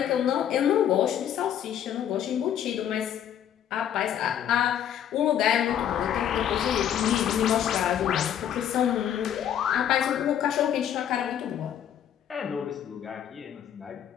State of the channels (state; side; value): quieter; right; 9.9 dB